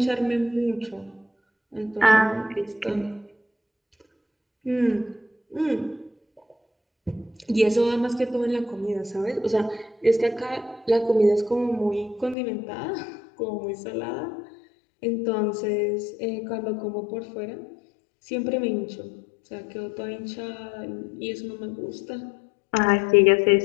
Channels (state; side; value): drops out; right; at 12.4 s